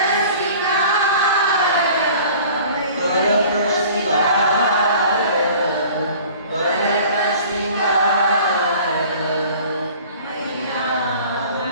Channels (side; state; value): both; inverted; correlation -0.47